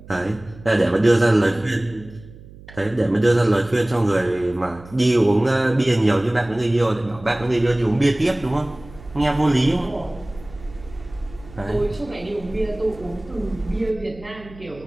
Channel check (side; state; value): right; noise; hum, 19 dB below the sound